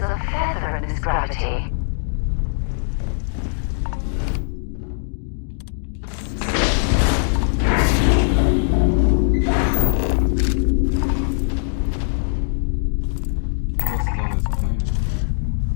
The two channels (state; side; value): silent; right; digital silence